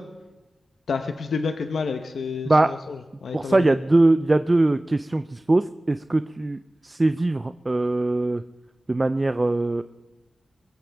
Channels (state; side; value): normal; both; correlation 0.97